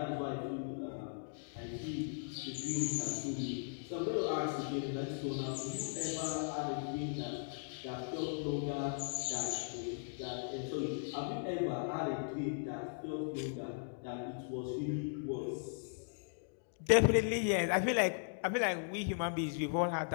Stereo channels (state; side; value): silent; right; digital silence